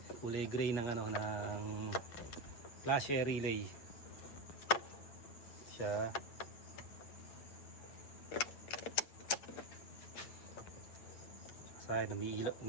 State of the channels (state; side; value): late; right; 8.3 ms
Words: Kulay gray ng ng flasher relay. Siya. Sayang,